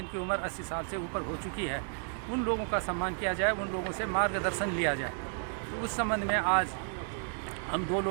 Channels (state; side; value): silent; left; 56 dB below the other